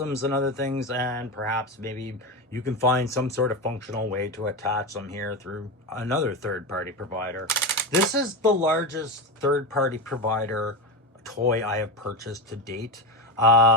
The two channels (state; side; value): normal; both; correlation 0.18